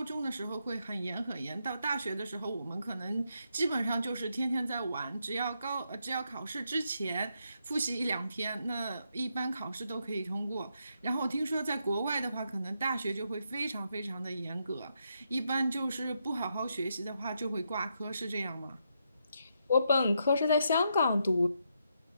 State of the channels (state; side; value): inverted; both; correlation -0.80